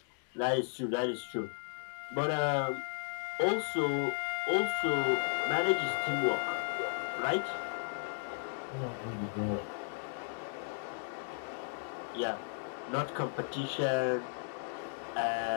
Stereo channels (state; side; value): silent; right; digital silence